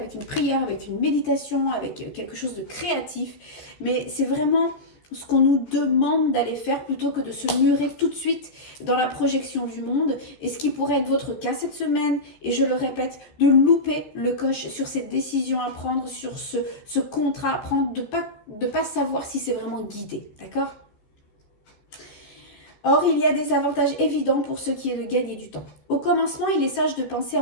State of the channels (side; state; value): right; late; 14 ms